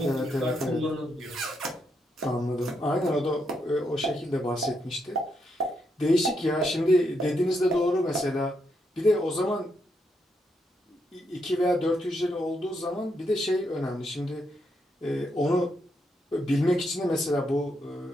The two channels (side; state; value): both; normal; correlation 0.79